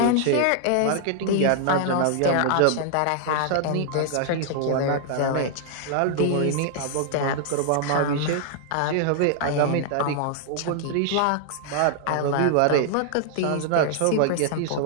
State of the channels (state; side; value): different; both; correlation 0.00